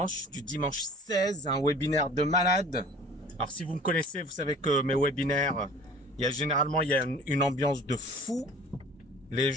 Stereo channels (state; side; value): normal; both; correlation 0.46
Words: du dimanche 16, un webinaire de malade. Alors si vous me connaissez, vous savez que mes webinaires, généralement il y a une ambiance de fou. Les